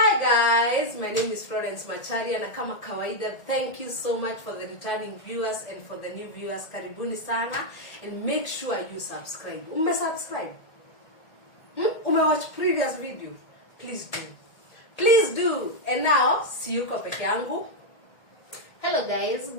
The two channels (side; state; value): right; late; 1.7 ms